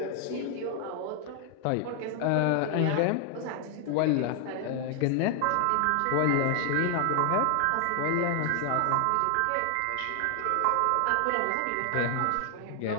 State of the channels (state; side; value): different; both; correlation 0.00